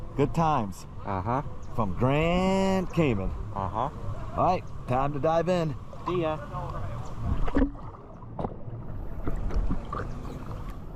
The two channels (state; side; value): identical; both; correlation 1.00